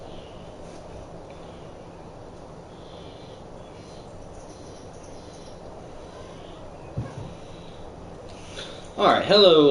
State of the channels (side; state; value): both; identical; correlation 1.00